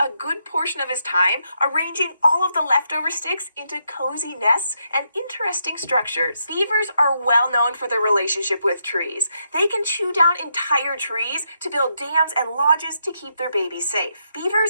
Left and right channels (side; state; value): both; inverted; correlation -0.79